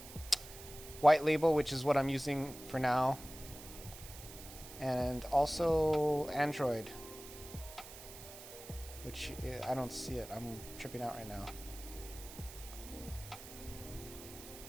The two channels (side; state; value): right; noise; hiss, 14 dB below the sound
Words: White Label, which is what I'm using for now, and also Android, which I don't see it. I'm tripping out right now.